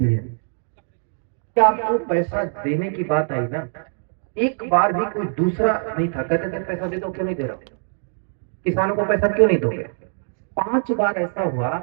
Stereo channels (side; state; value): left; silent; 57 dB below the other